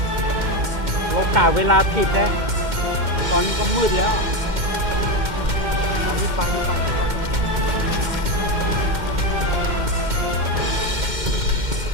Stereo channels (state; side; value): late; left; 2.1 ms